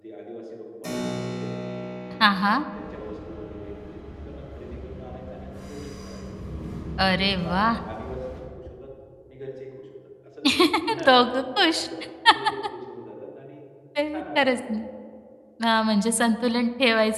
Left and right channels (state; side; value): identical; both; correlation 1.00